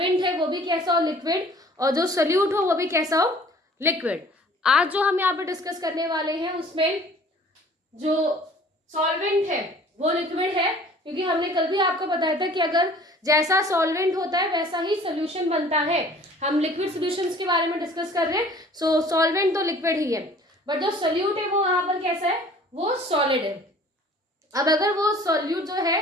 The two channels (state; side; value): normal; both; correlation 0.50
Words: है वो भी कैसा हो लिक्विड और जो सोल्यूट हो वो भी कैसा हो लिक्विड। आज जो हम यहाँ पे डिस्कस करने वाले हैं उसमें जो सॉल्वेंट है वो लिक्विड है, क्योंकि हमने कल भी आपको बताया था कि अगर जैसा सॉल्वेंट होता है वैसा ही सोल्यूशन बनता है। हम लिक्विड सॉल्यूशंस के बारे में डिस्कस कर रहे हैं। सो सॉल्वेंट तो लिक्विड ही है, बट जो सोल्यूट है वो यहाँ पर कैसा है, वो सॉलिड है। अब अगर वो सोल्यूट जो है